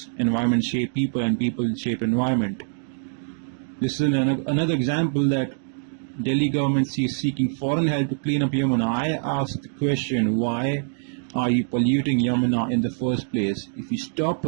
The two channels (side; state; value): left; silent; digital silence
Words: environment shape people and people shape environment. This is another example that Delhi government is seeking foreign help to clean up Yamuna. I asked the question, why are you polluting Yamuna in the first place? If you stop